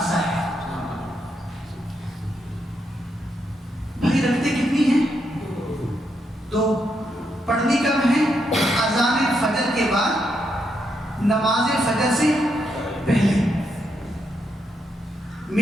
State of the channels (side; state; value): both; normal; correlation 0.80